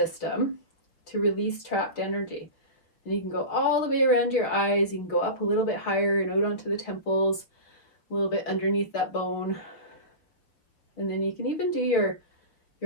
to release trapped energy. And you can go all the way around your eyes. You can go up a little bit higher and out onto the temples, a little bit underneath that bone. And then you can even do your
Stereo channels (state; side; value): late; right; 5.9 ms